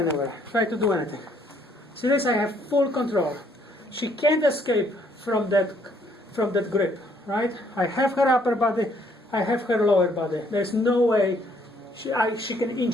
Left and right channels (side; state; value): both; normal; correlation 0.66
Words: Try to do anything. See this? I have full control. She can't escape from that grip, right? I have her upper body. I have her lower body. There's no way she can